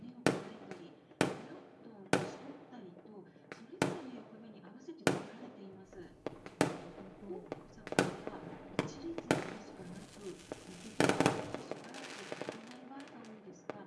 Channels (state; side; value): identical; both; correlation 1.00